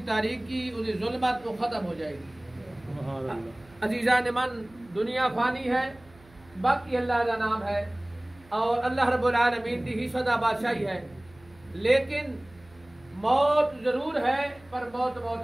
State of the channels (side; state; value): right; noise; hum, 26 dB below the sound